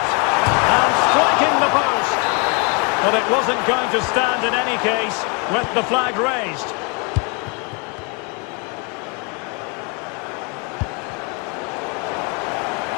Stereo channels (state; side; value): quieter; right; 33.6 dB